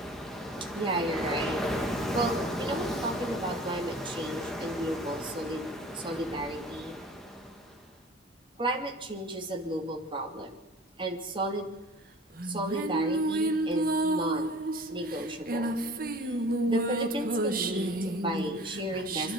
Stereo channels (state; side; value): normal; both; correlation 0.44